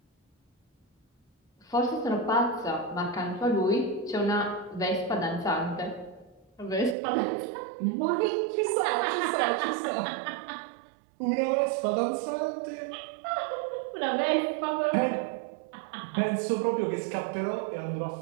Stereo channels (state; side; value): drops out; left; at 7.0 s